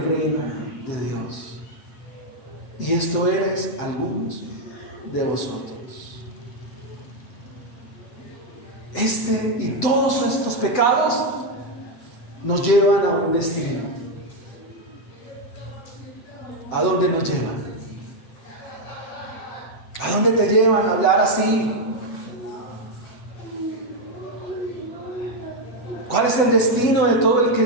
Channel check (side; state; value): right; late; 8.1 ms